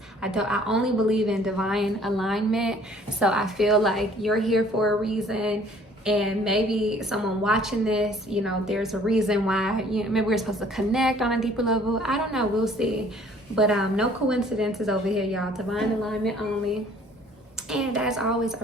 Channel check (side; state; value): both; normal; correlation 0.56